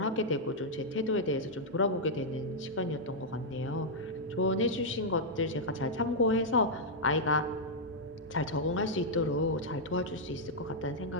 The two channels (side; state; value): both; normal; correlation -0.05